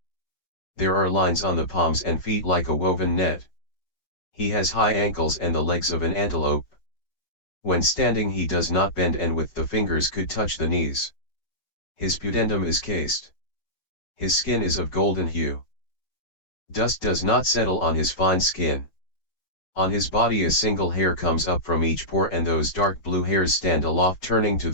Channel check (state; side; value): late; right; 5.5 ms